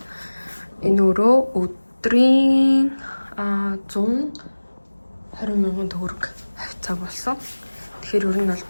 энэ өрөө өдрийн 120,000 төгрөг хавцаа болсон. Тэгэхээр ер нь бол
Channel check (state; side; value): inverted; both; correlation -1.00